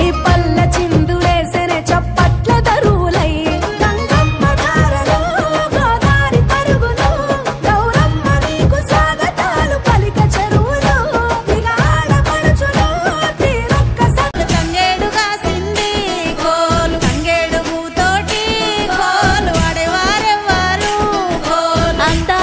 పల్ల చిందులేసెనే చప్పట్ల దరువులై గంగమ్మ దారలో గోదారి పరుగులు గౌరమ్మ నీకు స్వాగతాలు పలిక చెరువులు ఇక ఆడపడుచులు తీరొక్క తంగేడుగా సింది కోలు తంగేడు పూతోటి కోలు ఆడేవారెవ్వారు కోలు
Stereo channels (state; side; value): identical; both; correlation 1.00